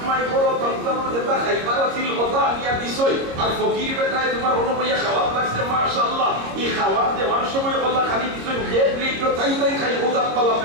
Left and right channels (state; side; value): late; left; 26 ms